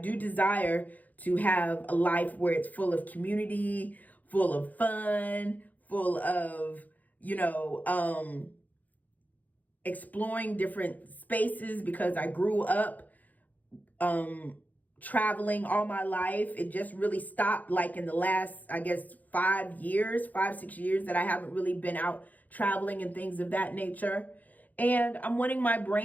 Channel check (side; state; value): right; late; 0.080 ms